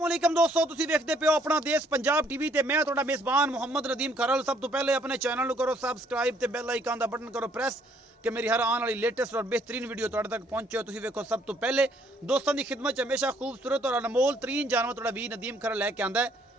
अस्सलामुअलैकुम दोस्तों, तुसी देखते पे हो अपना देश पंजाब टीवी ते मैं तुहाडा मेज़बान मुहम्मद नदीम खरल। सब तो पहले अपने चैनल को करो सबसक्राइब ते बेल आइकन का बटन करो प्रेस कि मेरी हर आने वाली लेटेस्ट और बेहतरीन वीडियो तुहाडे तक पहुंचे। तुसी देखो सब तो पहले दोस्तों की खिदमत हमेशा खूबसूरत और अनमोल तरीन जानवर तुहाडा वी नदीम खरल लैके आंदा है।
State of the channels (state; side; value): normal; both; correlation 0.65